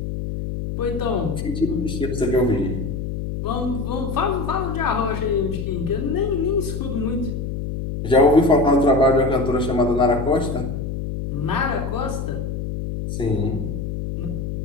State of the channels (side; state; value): left; noise; hum, 4 dB below the sound